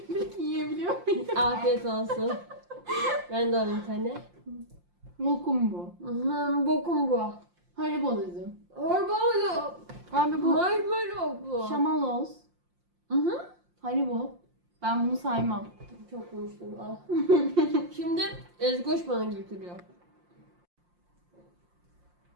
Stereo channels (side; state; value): left; late; 5.7 ms